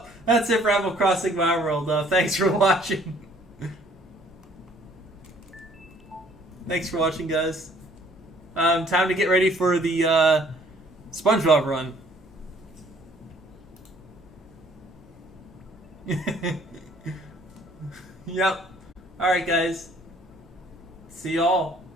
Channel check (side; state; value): both; normal; correlation 0.59